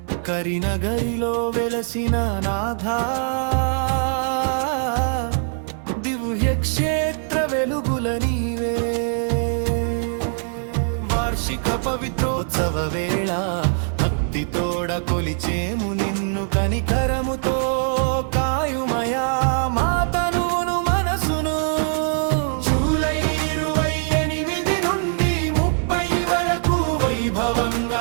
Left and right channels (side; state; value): left; silent; 64 dB below the other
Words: కరినగరిలో వెలసిన నాథా, దివ్య క్షేత్ర వెలుగుల నీవే। వార్షిక పవిత్రోత్సవ వేళ భక్తితోడ కొలిచేము నిన్ను, కనికరముతో కాయుమయా మా తనువును మనసును। జూలై 28 నుండి 30 వరకు